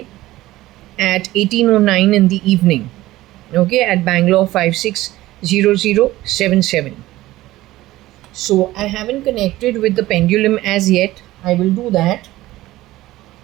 at 18:09 in the evening. Okay, at Bangalore 560077. So I haven't connected with the pendulum as yet. I will do that.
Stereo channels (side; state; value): left; quieter; 16.6 dB